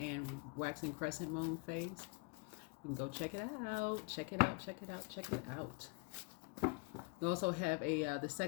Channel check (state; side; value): quieter; right; 32.4 dB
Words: waxing crescent moon phase. You can go check it out. We also have the